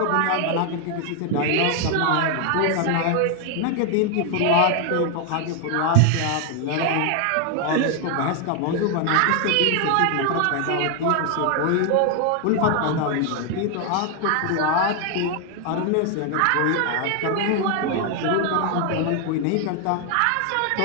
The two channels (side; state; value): both; different; correlation 0.00